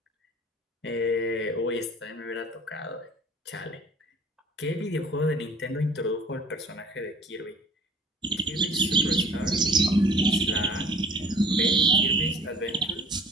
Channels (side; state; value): both; normal; correlation 0.48